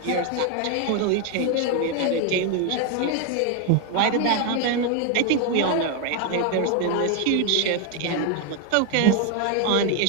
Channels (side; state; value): both; different; correlation 0.01